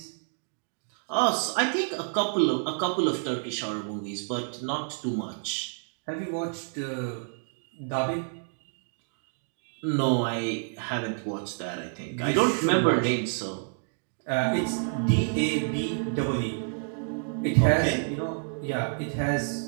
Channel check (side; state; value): left; silent; digital silence